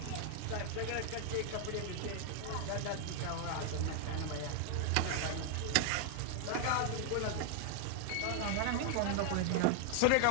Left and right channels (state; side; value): different; both; correlation 0.00